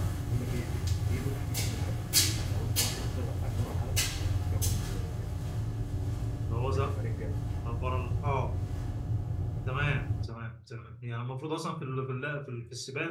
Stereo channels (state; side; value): identical; both; correlation 1.00